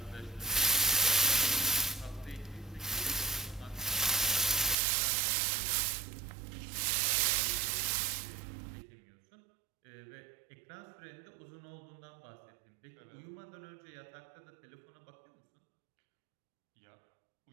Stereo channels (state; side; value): drops out; left; at 4.8 s